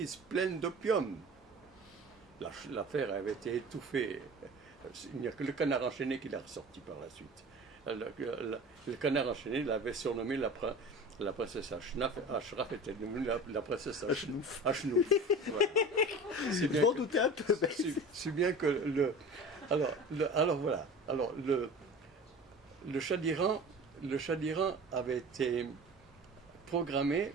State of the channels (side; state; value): both; normal; correlation 0.37